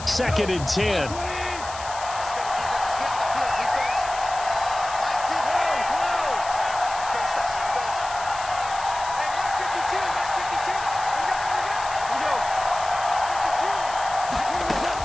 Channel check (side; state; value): left; noise; hiss, 13 dB below the sound